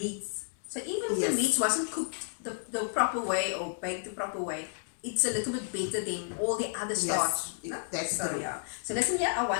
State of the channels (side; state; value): right; silent; digital silence